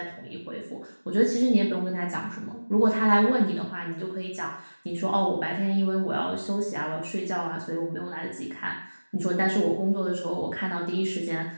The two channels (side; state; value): both; inverted; correlation -1.00